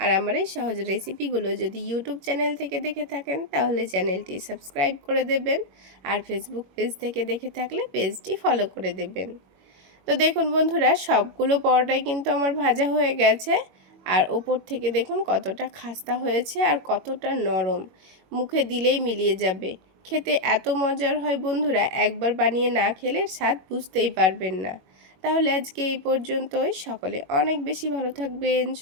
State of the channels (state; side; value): late; left; 22 ms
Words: আমার এই সহজ রেসিপিগুলো যদি ইউটিউব চ্যানেল থেকে দেখে থাকেন তাহলে চ্যানেলটি সাবস্ক্রাইব করে দেবেন। আর ফেসবুক পেজ থেকে দেখে থাকলে পেজটি ফলো করে দেবেন। তো দেখুন বন্ধুরা, সবগুলো পরোটাই কিন্তু আমার ভাজা হয়ে গেছে। আর ওপর থেকে দেখুন কতটা খাস্তা হয়েছে আর কতটা নরম, মুখে দিলেই মিলিয়ে যাবে। খেতে এত মজার হয় বন্ধুরা, একবার বানিয়ে না খেলে স্বাদ বুঝতেই পারবেন না। তাহলে আজকে এই পর্যন্তই। সকলে অনেক বেশি ভালো থাকবেন,